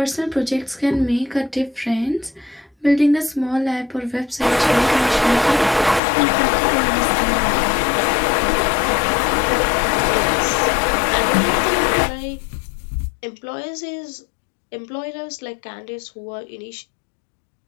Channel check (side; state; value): right; drops out; at 6.0 s